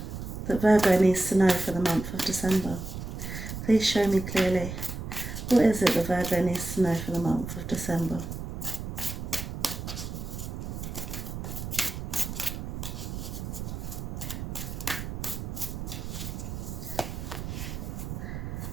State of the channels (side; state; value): right; noise; rumble, 6 dB below the sound